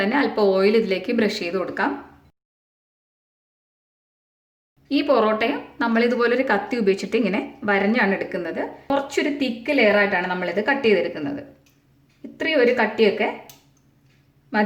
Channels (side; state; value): both; identical; correlation 1.00